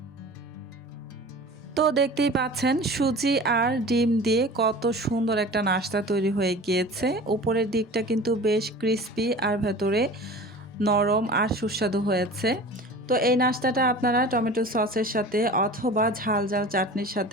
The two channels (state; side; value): normal; both; correlation 0.39